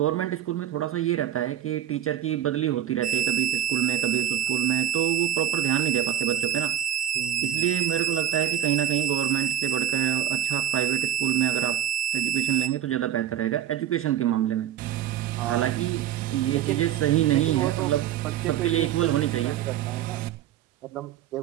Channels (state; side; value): quieter; left; 11.1 dB